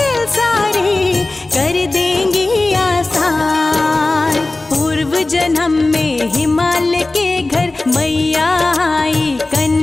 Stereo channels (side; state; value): right; quieter; 3.0 dB